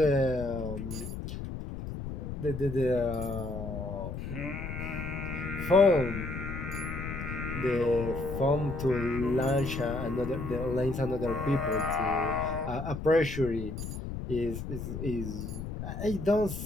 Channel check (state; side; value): noise; left; rumble, 6 dB below the sound